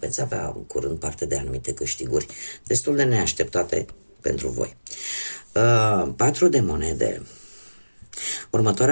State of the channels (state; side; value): inverted; both; correlation -1.00